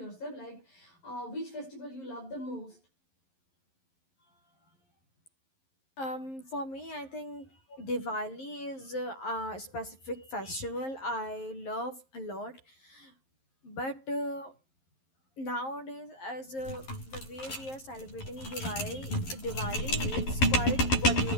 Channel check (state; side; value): late; right; 11 ms